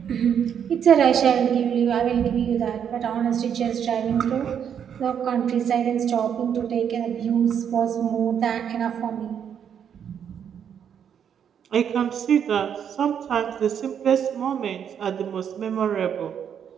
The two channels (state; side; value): quieter; left; 8.3 dB